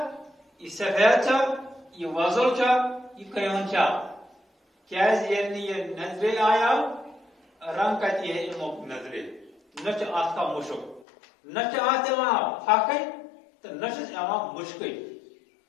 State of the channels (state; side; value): drops out; right; at 11.1 s